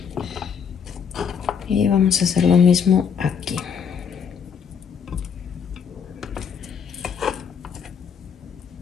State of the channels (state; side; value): quieter; right; 6.9 dB